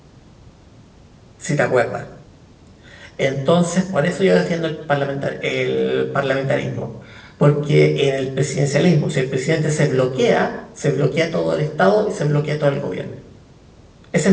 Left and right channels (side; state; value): both; identical; correlation 1.00